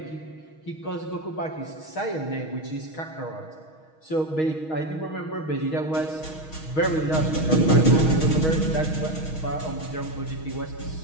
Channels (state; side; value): late; right; 6.3 ms